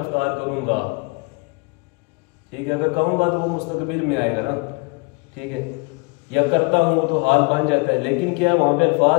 افطار کروں گا، ٹھیک ہے، اگر کہوں گا تو وہ مستقبل میں آئے گا نا، ٹھیک ہے، یا کرتا ہوں تو حال بن جاتا ہے، لیکن کیا وہاں پہ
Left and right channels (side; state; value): right; quieter; 30.4 dB